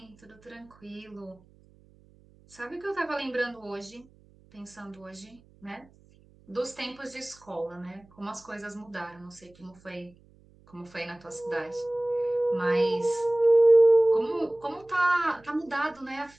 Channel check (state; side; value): noise; right; hum, 28 dB below the sound